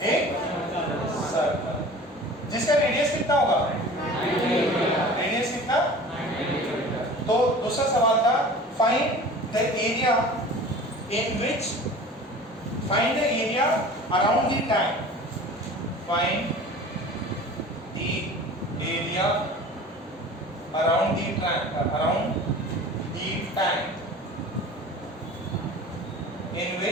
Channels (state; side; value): normal; both; correlation 0.41